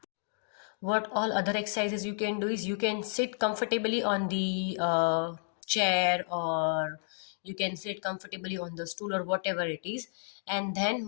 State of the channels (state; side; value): silent; right; digital silence